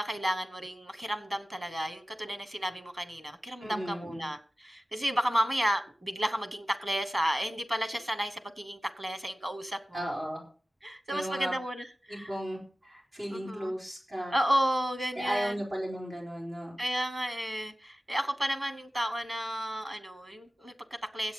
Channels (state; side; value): normal; both; correlation 0.95